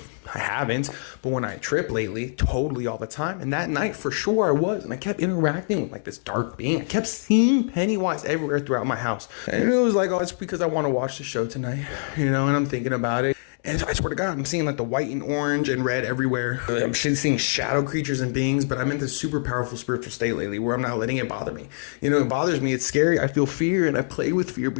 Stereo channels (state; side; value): silent; right; digital silence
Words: I haven't, but when I trip lately, totally all the time. And that night, for sure, I was. And I kept interacting with like this dark being. I kept seeing Pennywise everywhere throughout my house. And it was like, oh, it's because I want to watch the show tonight, and I'm thinking about it. And I swear to God, I'm seeing like the white and orange and red everywhere. I'm seeing shadow creatures and beings, but I'm in this super powerful spiritual state lately where I'm not letting it bother me. It bothers me. It's scary. I feel fear, and I play with fear